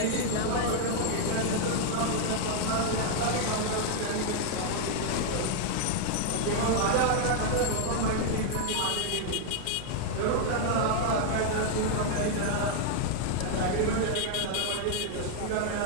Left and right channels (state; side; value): different; both; correlation 0.00